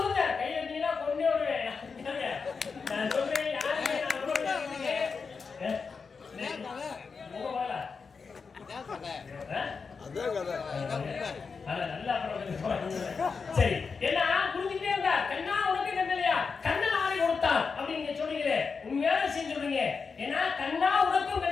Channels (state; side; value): quieter; right; 5.2 dB